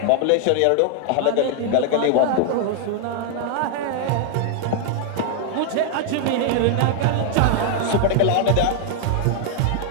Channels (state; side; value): different; both; correlation 0.00